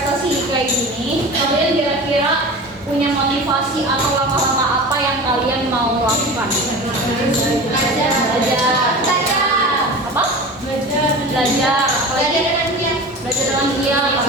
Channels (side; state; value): both; normal; correlation 0.33